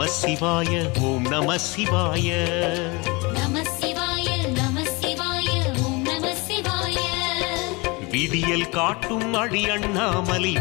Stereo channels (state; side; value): quieter; right; 26.7 dB